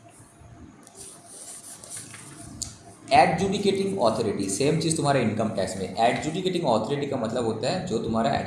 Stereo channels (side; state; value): both; identical; correlation 1.00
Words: एडजुडिकेटिंग अथॉरिटी, सेम चीज़ तुम्हारा इनकम टैक्स में. एडजुडिकेटिंग अथॉरिटी का मतलब होता है जो तुम्हारा